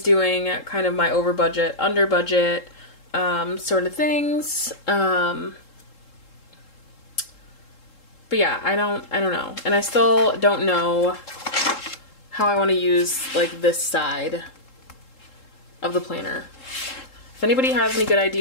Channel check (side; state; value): right; late; 3.7 ms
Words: doing kind of my over budget, under budget sort of things. But yeah, I don't know. And I still don't know how I want to use like this side of the planner. If anybody has any good